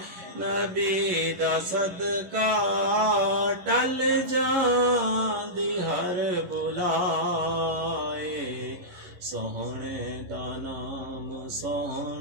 نبی دا صدقہ، ٹل جاندی ہر بلائے. سونے دا نام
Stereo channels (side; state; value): left; late; 11 ms